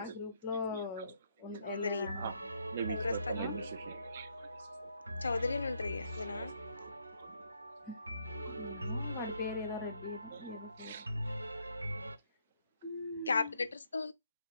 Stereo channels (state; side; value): inverted; both; correlation -0.74